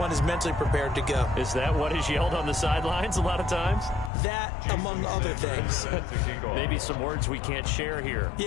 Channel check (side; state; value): right; drops out; at 4.1 s